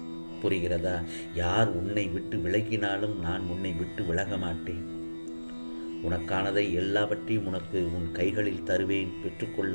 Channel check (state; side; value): inverted; both; correlation -1.00